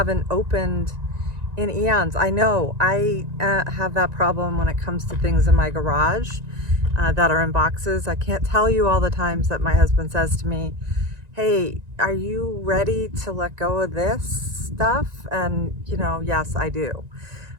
opened in eons. I know I have that problem when it comes to things in my garage that are in boxes. I can't tell you all the times that my husband says to me, hey, are you ready to let go of this stuff? And, you know, yes, I do.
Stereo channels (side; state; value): left; late; 1.9 ms